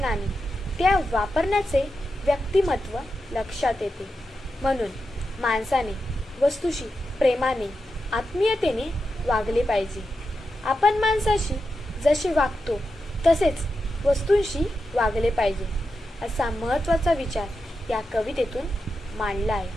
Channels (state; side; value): normal; both; correlation 0.88